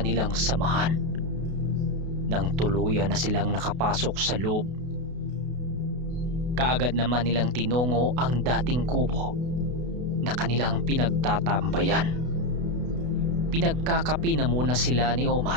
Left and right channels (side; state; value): left; late; 32 ms